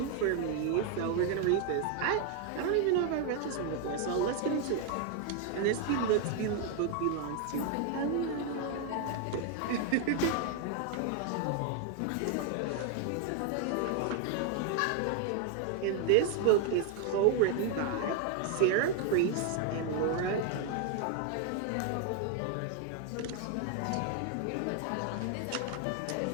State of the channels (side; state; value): both; different; correlation 0.01